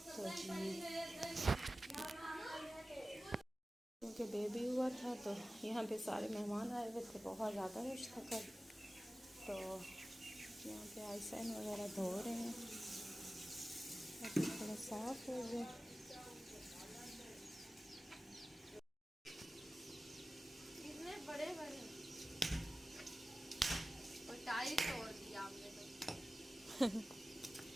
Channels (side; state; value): both; normal; correlation 0.96